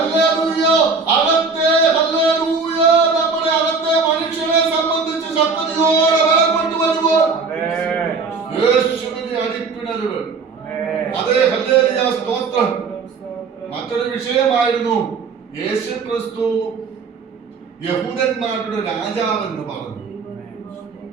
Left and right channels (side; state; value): left; quieter; 4.6 dB